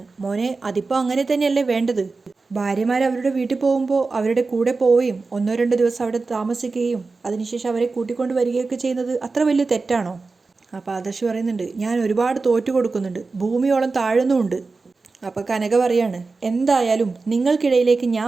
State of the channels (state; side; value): quieter; left; 4.0 dB